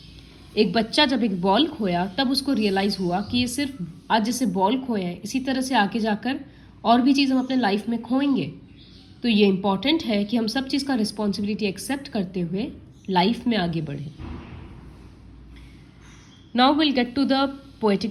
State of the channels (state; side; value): identical; both; correlation 1.00